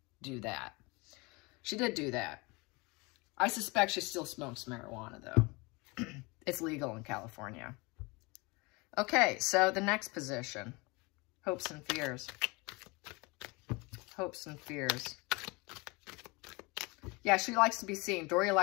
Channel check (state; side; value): quieter; right; 26.4 dB